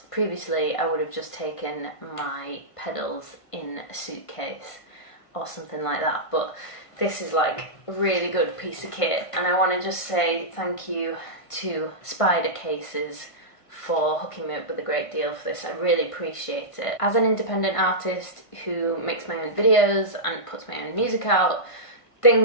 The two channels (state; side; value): late; right; 1.5 ms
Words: previously I would have just taken my pedals in a suitcase or something like that, but this is like a really good piece of kit, and I want to just say thank you to Spider Cases for hooking me up with a great deal for this. I really appreciate it. As an independent artist who makes my own videos and puts my own music out,